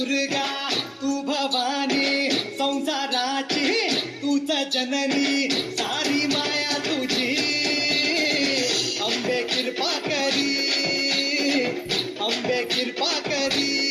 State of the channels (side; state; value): both; identical; correlation 1.00